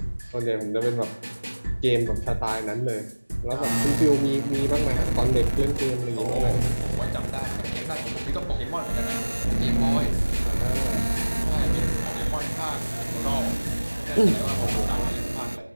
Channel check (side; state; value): both; inverted; correlation -1.00